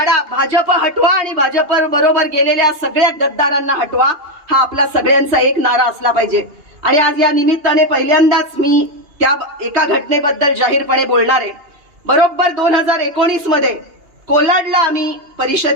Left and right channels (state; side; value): late; left; 2.8 ms